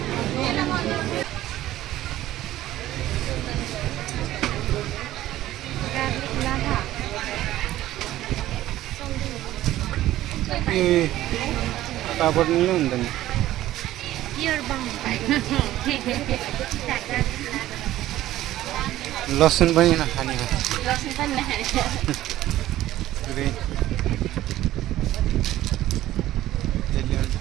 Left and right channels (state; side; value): quieter; left; 14.5 dB